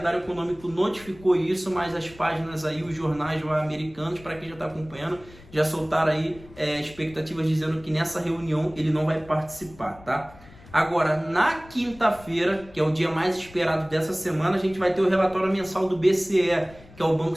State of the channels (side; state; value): left; noise; rumble, 22 dB below the sound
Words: econômico notificou isso, mas as páginas aí, os jornais americanos, para quem já está acompanhando, já soltaram aí expectativas dizendo que nessa reunião ele não vai participar, tá? Agora, na quinta-feira, que é o dia mais esperado dessa semana, a gente vai ter o relatório mensal do BCE, que é o Banco